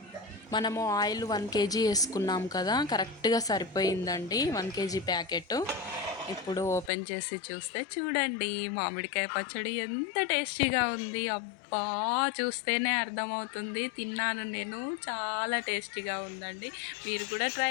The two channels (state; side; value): drops out; right; at 6.9 s